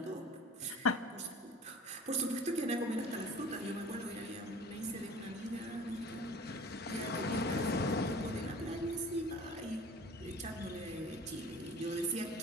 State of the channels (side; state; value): both; normal; correlation 0.43